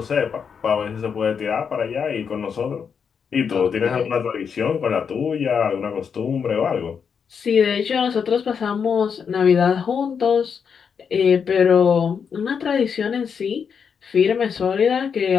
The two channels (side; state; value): right; quieter; 6.6 dB